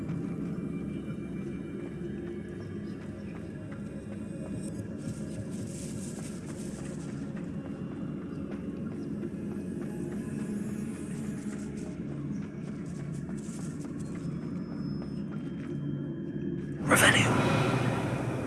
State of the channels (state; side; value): identical; both; correlation 1.00